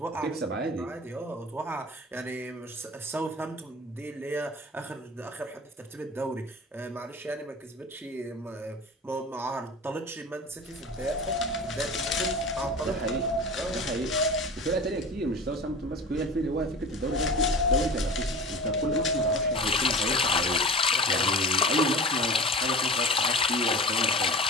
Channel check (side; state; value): both; normal; correlation 0.35